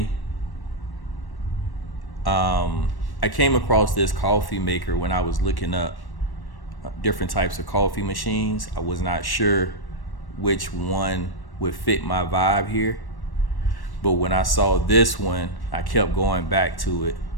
I came across this coffee maker when I was looking up different types of coffee machines. I was not sure which one would fit my vibe here, but when I saw this one, I kept going back to it.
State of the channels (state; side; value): late; right; 1.1 ms